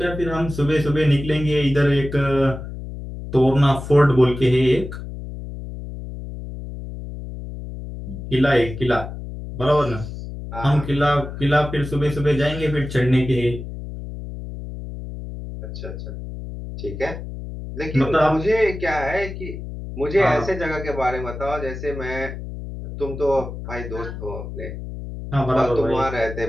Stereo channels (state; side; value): noise; left; hum, 9 dB below the sound